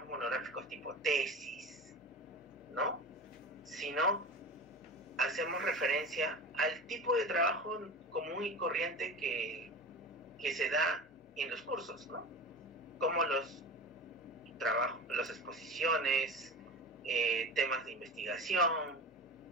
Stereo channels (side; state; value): both; normal; correlation 0.31